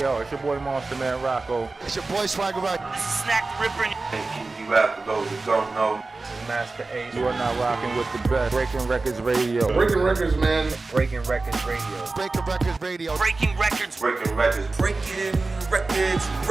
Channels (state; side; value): quieter; left; 3.6 dB